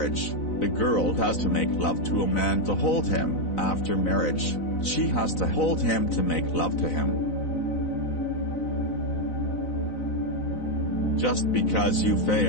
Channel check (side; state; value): right; late; 4.0 ms